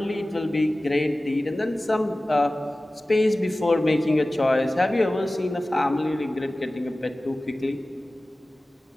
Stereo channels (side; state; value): both; normal; correlation 0.97